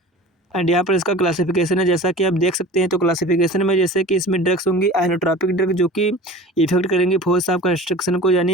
एंड यहाँ पर इसका क्लासिफिकेशन है, जैसा कि आप देख सकते हैं। तो क्लासिफिकेशन में जैसे कि इसमें ड्रग्स होंगी आइनोट्रॉपिक ड्रग, जो कि इफेक्ट करेंगी फोर्स ऑफ कंस्ट्रक्शन को,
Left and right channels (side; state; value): both; normal; correlation 0.39